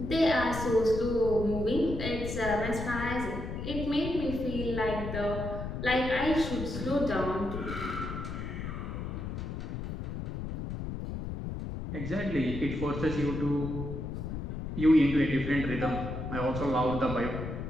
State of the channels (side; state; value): left; noise; rumble, 5 dB below the sound